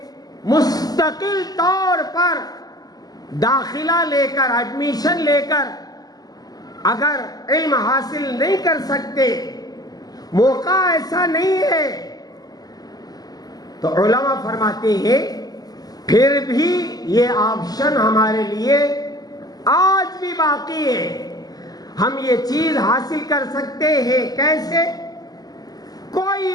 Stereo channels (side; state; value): right; late; 0.18 ms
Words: مستقل طور پر داخلہ لے کر، ایڈمیشن لے کر اگر علم حاصل نہیں کر سکتے، موقع ایسا نہیں ہے، تو علماء فرماتے ہیں پھر بھی یہ آپشن ہمارے لیے آج بھی باقی ہے. ہم یہ چیز حاصل کر سکتے ہیں. کیسے؟